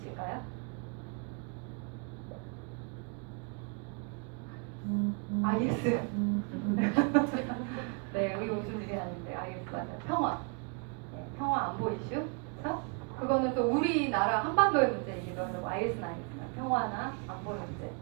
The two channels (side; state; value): left; quieter; 36.2 dB